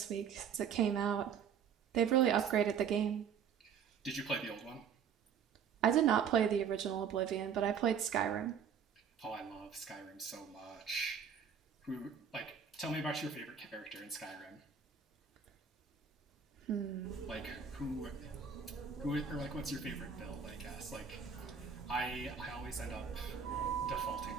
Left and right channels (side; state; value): left; quieter; 7.2 dB